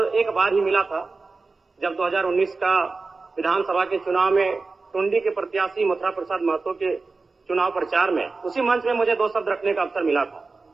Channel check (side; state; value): left; quieter; 3.9 dB